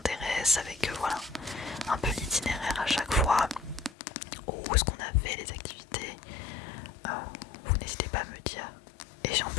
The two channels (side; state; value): right; drops out; at 3.9 s